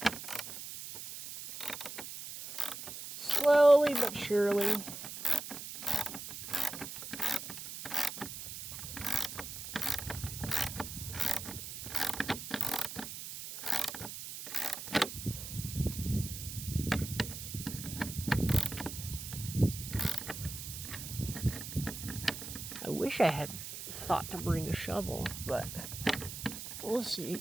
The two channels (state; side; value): noise; right; hiss, 9 dB below the sound